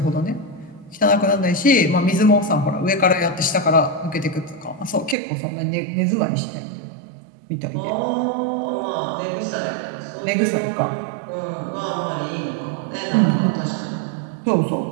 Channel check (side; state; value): left; drops out; at 5.2 s